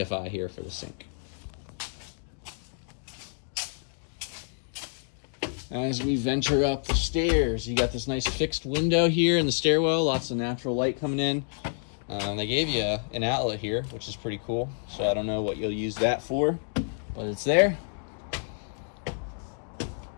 here for the sink. As we venture up the stairs, you got this nice fixed window here in the stairwell, lots of natural light coming in. They gave you an outlet here, which is pretty cool. So I don't know what you'll use that for, but it's there.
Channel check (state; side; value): silent; right; digital silence